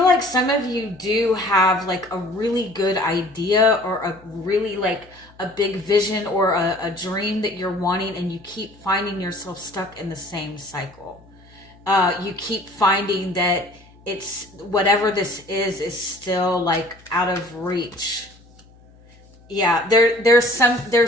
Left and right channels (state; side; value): noise; left; hum, 26 dB below the sound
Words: like some of you do have like a really good idea, or a really like a big vision, or a dream that you're wanting, and you keep finding yourself stuck in the same cycle. You keep finding that it's whatever this is still like out of reach. Yeah, there's